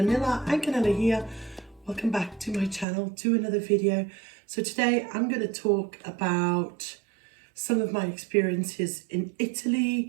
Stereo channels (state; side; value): drops out; left; at 2.9 s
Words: Canela here. Welcome back to my channel, to another video. So today I'm going to talk about some of my experiences in